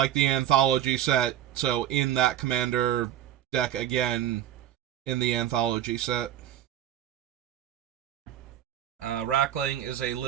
Anthology set, so in that Commander deck again in the Anthology set. Rackling is a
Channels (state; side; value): quieter; left; 11.5 dB